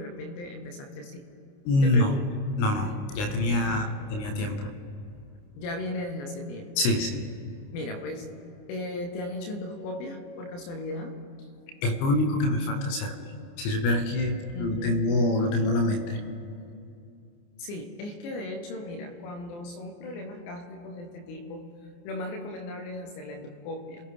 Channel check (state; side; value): late; right; 29 ms